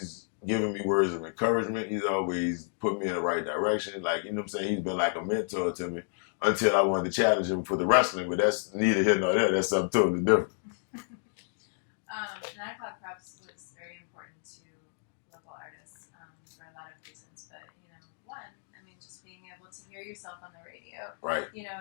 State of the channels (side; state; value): right; silent; digital silence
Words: giving me words of encouragement. He's always put me in the right direction. Like, you know what I'm saying? He's been like a mentor to me until I wanted to challenge him for the wrestling, but that's neither here nor there. That's something totally different. 9 o'clock props was very important to local artists for a lot of reasons. But, one, just being able to hear yourself on the radio. Right.